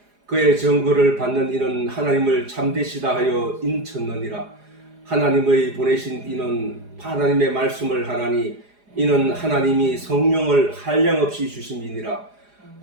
그의 증거를 받는 이는 하나님을 참되시다 하여 인쳤느니라. 하나님의 보내신 이는 하나님의 말씀을 하나니 이는 하나님이 성령을 한량없이 주심이니라.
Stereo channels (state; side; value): late; left; 4.9 ms